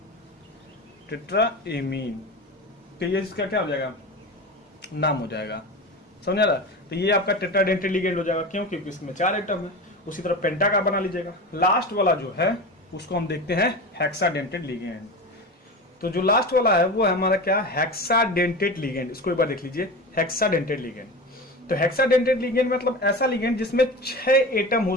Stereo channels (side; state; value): both; normal; correlation 0.28